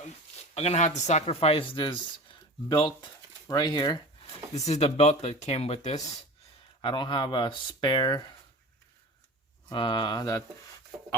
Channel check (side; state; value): both; normal; correlation 0.35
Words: gonna have to sacrifice this belt right here. This is the belt that came with this. I don't have a spare that